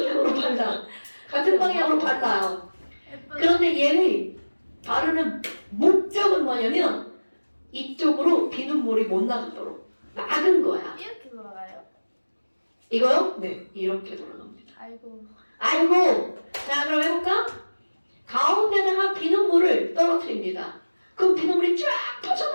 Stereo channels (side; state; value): both; inverted; correlation -1.00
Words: 발라. 같은 방향으로 발라요. 그런데 얘의 바르는 목적은 뭐냐면 이쪽으로 비눗물이 못 나가도록 막은 거야. 이렇게 돌아가요? 이거요? 네. 이렇게 돌아갑니다. 아이고. 아이고! 자 그럼 해볼까? 가운데다가 비눗물을 떨어뜨립니다. 그럼 비눗물이 쫙